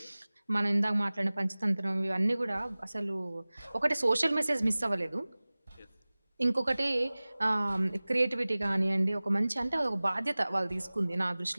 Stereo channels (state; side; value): inverted; both; correlation -0.99